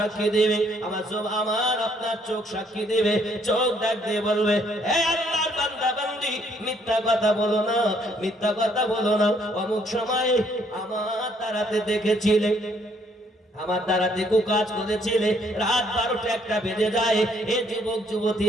দেবে, আমার আপনার চোখ সাক্ষী দেবে। চোখ ডাক দিয়ে বলবে, হে আল্লাহর বান্দা বান্দি, মিথ্যা কথা বলো না, মিথ্যা কথা বলো না। অমুক সময়ে আমার তারাতে দেখেছিলে, আমার দ্বারাতে কাজ করেছিলে, রাত 12টা 1টা বেজে যায়, এ যুবক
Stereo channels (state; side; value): normal; both; correlation 0.67